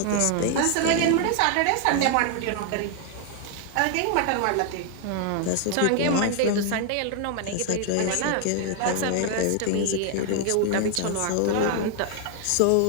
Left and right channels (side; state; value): both; different; correlation 0.00